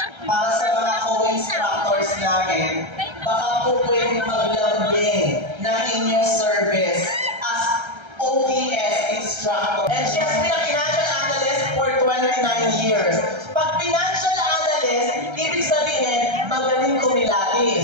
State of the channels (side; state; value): left; late; 1.3 ms